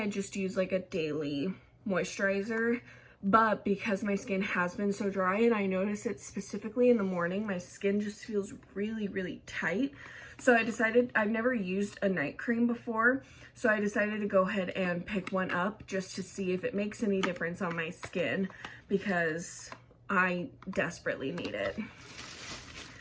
just use a daily moisturizer, but because my skin has been so dry, and I notice it specifically in the morning, my skin just feels really tight. So I decided, I've never used a night cream before, so I decided to go ahead and pick one up just to see if it makes any difference on my skin, because I desperately need it.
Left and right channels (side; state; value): both; identical; correlation 1.00